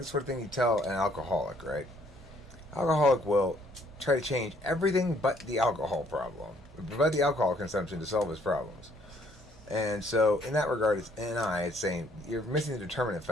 the sort of thing you tell an alcoholic, right? Alcoholic will try to change everything but the alcohol problem, but the alcohol consumption to solve his problems. And so in that regard, it's NI. It's saying you're missing the determinant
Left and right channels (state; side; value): normal; both; correlation 0.64